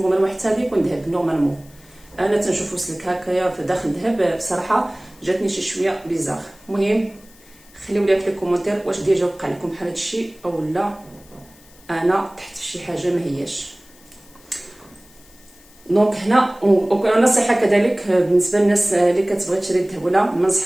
حتى هذا يكون ذهب نورمالمون. انا تنشوفو سلك هكايا في داخل الذهب بصراحه جاتني شي شويه بيزار. المهم خليو لي في الكومونتير واش ديجا وقع لكم بحال هادشي او لا انا تحت شي حاجه ما هياش. دونك هنا ونصيحه كذلك بالنسبه للناس اللي كتبغي تشري الذهب ولا ما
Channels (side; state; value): left; noise; hiss, 26 dB below the sound